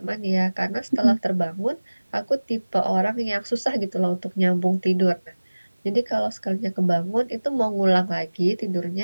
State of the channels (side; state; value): both; inverted; correlation -1.00